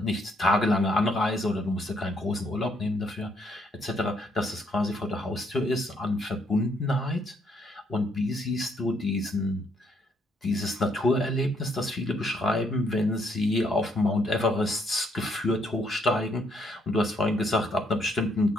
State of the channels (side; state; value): both; normal; correlation 0.71